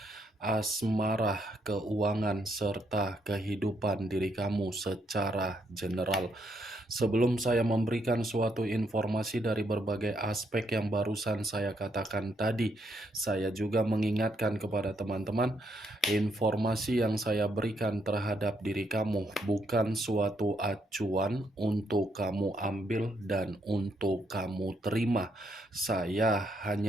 asmara, keuangan, serta kehidupan diri kamu secara general. Sebelum saya memberikan suatu informasi dari berbagai aspek yang barusan saya katakan tadi, saya juga mengingatkan kepada teman-teman, informasi yang saya berikan terhadap diri kamu bukan suatu acuan untuk kamu ambil dan untuk kamu terima. Saya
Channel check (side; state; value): both; normal; correlation 0.75